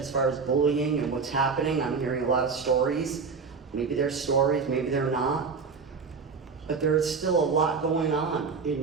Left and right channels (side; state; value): left; quieter; 5.1 dB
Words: far as bullying and what's happening. I'm hearing a lot of stories. Maybe they're stories, maybe they're not. But there is still a lot going on in